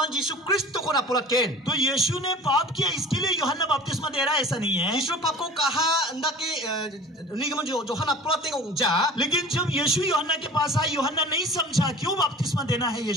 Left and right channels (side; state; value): both; normal; correlation 0.42